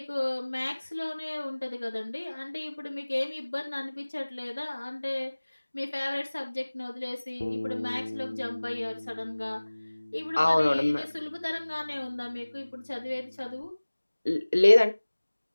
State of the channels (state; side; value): inverted; both; correlation -1.00